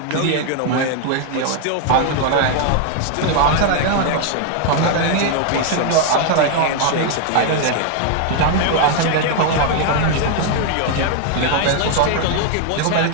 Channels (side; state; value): both; different; correlation 0.00